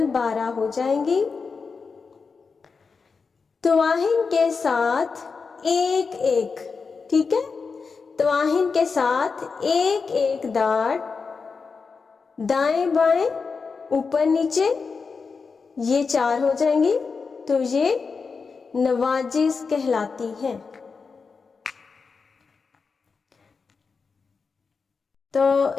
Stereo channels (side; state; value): right; quieter; 5.0 dB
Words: 12 ہو جائیں گی. طواہن کے ساتھ ایک ایک، ٹھیک ہے، طواہن کے ساتھ ایک ایک داڑ دائیں بائیں اوپر نیچے، یہ 4 ہو جائیں گی. تو یہ نواجس کہلاتی ہیں. تو